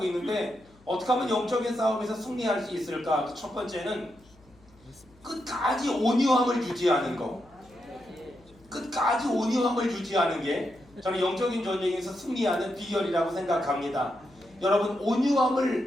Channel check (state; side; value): noise; left; hum, 28 dB below the sound